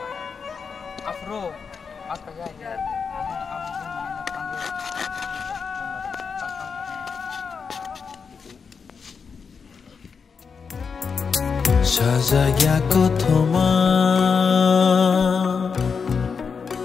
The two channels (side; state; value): right; quieter; 5.7 dB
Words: Afro, apa ya? Sajaya kothoma